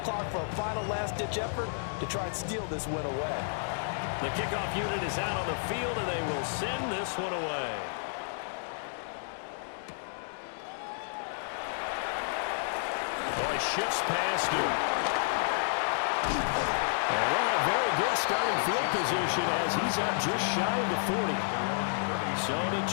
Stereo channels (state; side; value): silent; right; digital silence